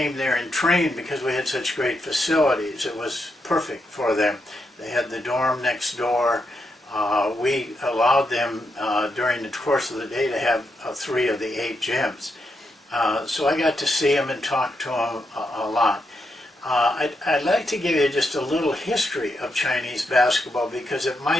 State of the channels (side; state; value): both; normal; correlation 0.82